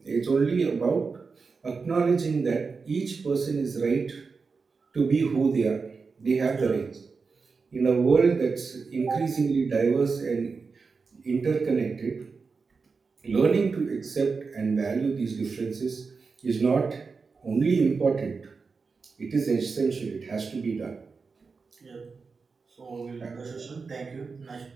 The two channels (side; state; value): left; quieter; 4.8 dB